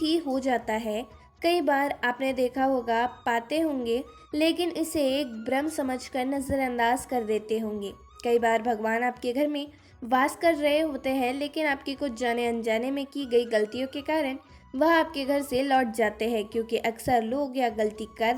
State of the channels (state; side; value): identical; both; correlation 1.00